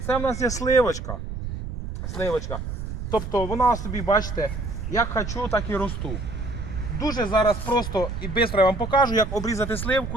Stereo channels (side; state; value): right; noise; rumble, 6 dB below the sound